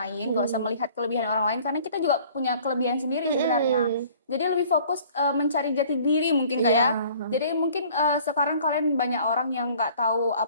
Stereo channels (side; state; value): both; inverted; correlation -0.53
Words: nggak usah melihat kelebihan orang lain, karena kita juga punya kelebihan sendiri sebenarnya. Jadi lebih fokus mencari jati diri mungkin Kak ya. Jadi mungkin sekarang kalian banyak orang yang nggak tahu